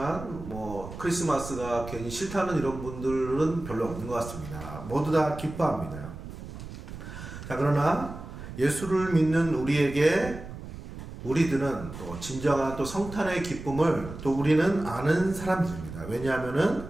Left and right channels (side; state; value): right; noise; rumble, 11 dB below the sound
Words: 크리스마스가 괜히 싫다는 이런 분들은 별로 없는 것 같습니다. 모두 다 기뻐합니다. 자, 그러나 예수를 믿는 우리들은 또 진정한 또 성탄의 기쁨을 또 우리는 아는 사람들입니다. 왜냐하면은